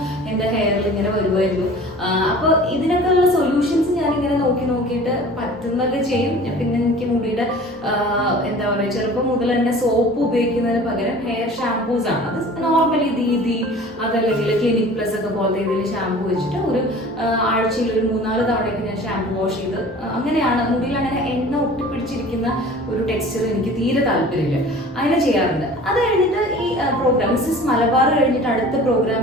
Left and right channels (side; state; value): both; normal; correlation 0.44